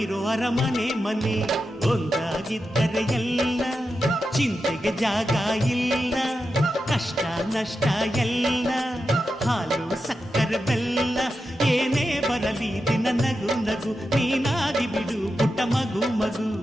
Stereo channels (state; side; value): normal; both; correlation 0.89